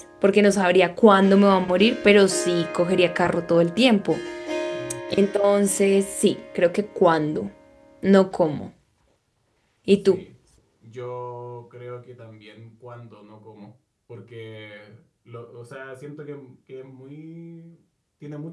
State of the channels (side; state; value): both; identical; correlation 1.00